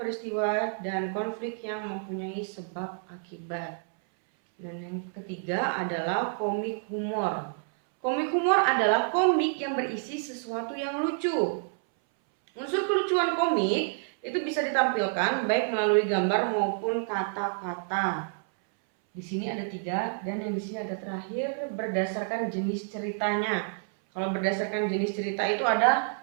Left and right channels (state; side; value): silent; left; 59 dB below the other